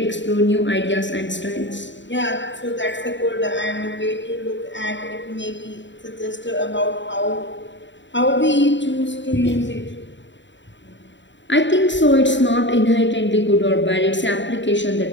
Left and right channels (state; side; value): late; right; 0.54 ms